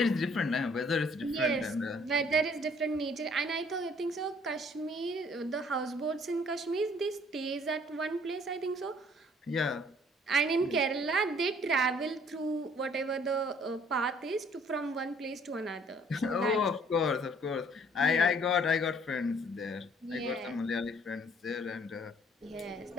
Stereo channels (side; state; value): both; normal; correlation 0.59